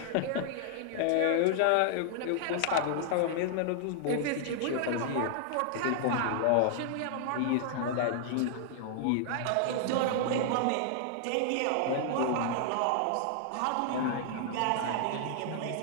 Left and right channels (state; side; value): different; both; correlation -0.01